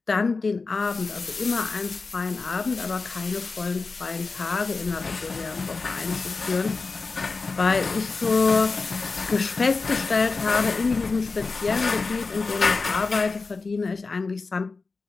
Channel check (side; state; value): right; quieter; 4.1 dB